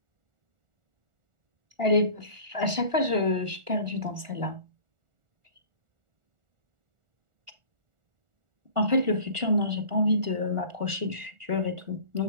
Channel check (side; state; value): left; late; 1.4 ms